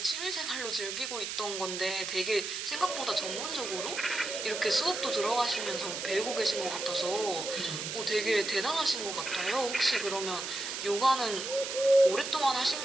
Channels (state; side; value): noise; right; hiss, 5 dB below the sound